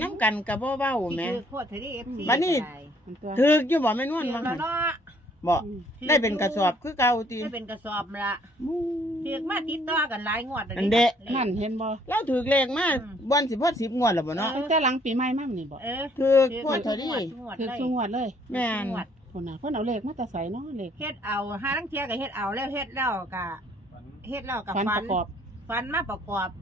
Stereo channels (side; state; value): both; normal; correlation 0.63